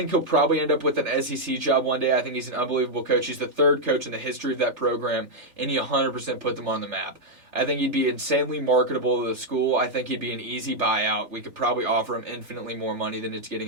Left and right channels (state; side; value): late; left; 3.4 ms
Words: he'll probably end up with an SEC job one day. I think he's an unbelievable coach. He's the third coach in the history of that program, and he 100% put them on the map. I think he'd be insanely marketable to the school. I think he'd be an easy buyout. We could probably offer him infinitely more money than it's